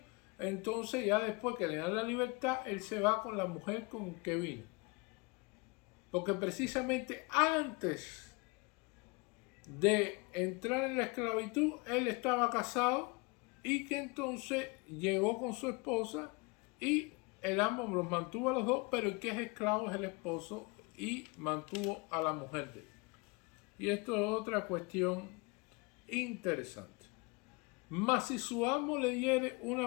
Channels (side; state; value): right; quieter; 28.1 dB